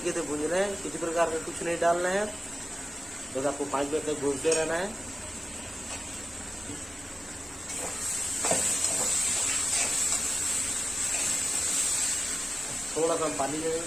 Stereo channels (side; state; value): both; normal; correlation 0.96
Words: से भूनना है। किसी प्रकार का कुछ नहीं डालना है, बस आपको 5 मिनट तक भूनते रहना है। थोड़ा सा हम पानी ले लेंगे,